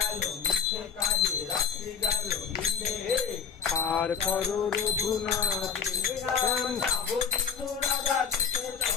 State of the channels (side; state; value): right; quieter; 6.9 dB